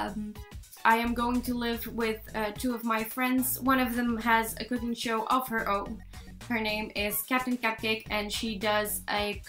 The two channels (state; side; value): identical; both; correlation 1.00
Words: am going to live with 2 of my friends. One of them has a cooking show of her own. Her name is Captain Cupcake and she does a